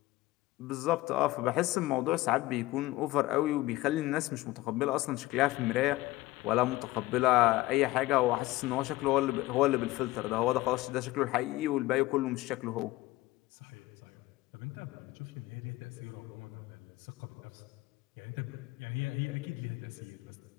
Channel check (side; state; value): right; quieter; 18.4 dB